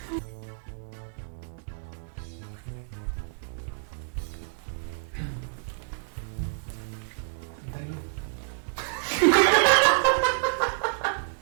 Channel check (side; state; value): left; silent; digital silence